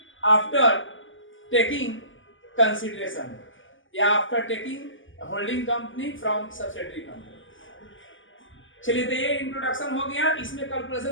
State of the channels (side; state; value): right; late; 0.57 ms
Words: after taking consideration, या after taking holding company from subsidiary company. चलिए, तो ये इंट्रोडक्शन हो गया, इसमें